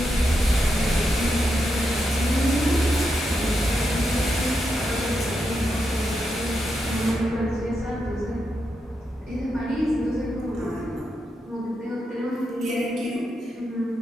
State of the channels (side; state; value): both; normal; correlation 0.84